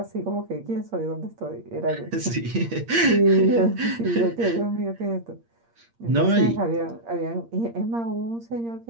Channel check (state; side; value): late; left; 8.6 ms